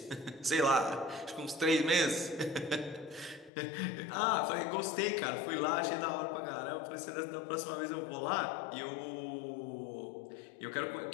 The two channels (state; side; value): drops out; right; at 3.5 s